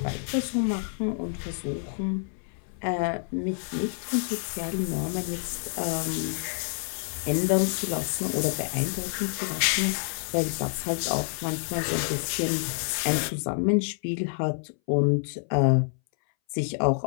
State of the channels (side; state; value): right; silent; 59 dB below the other